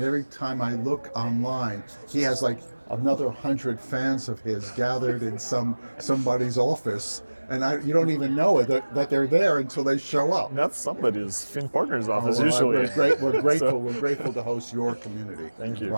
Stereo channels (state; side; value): inverted; both; correlation -1.00